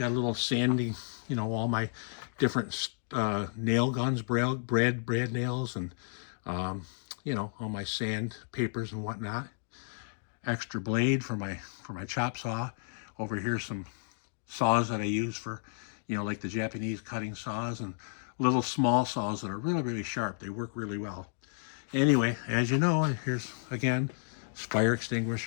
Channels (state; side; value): silent; right; digital silence